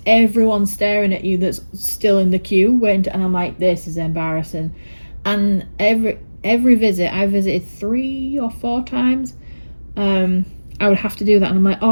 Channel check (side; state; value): both; inverted; correlation -1.00